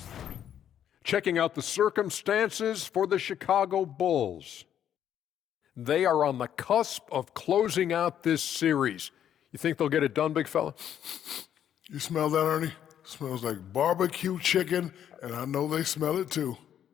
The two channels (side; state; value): right; quieter; 9.9 dB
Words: Checking out the circumstances for the Chicago Bulls. They are on the cusp of closing out this series. You think they'll get it done, big fella? You smell that, Ernie? Smells like barbecue chicken, and I know they smell it too.